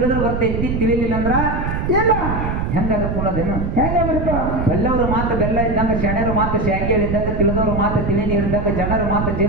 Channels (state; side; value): noise; right; rumble, 2 dB below the sound